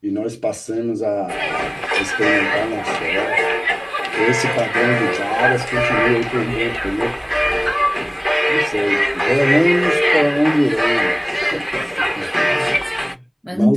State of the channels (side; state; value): both; identical; correlation 1.00